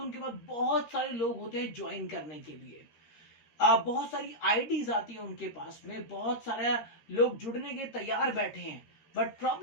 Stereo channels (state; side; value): late; right; 13 ms